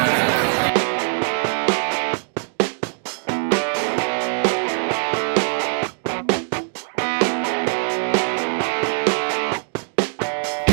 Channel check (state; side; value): silent; left; digital silence